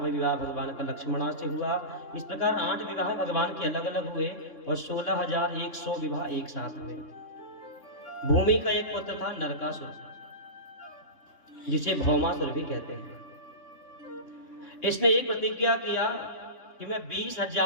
विवाह भगवान का लक्ष्मणा से हुआ। इस प्रकार 8 विवाह भगवान के अलग अलग हुए और 16,100 विवाह एक साथ हुए। भूमि का एक पुत्र था नरकासुर, जिसे भौमासुर भी कहते हैं। इसने एक प्रतिज्ञा किया कि मैं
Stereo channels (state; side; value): late; right; 2.8 ms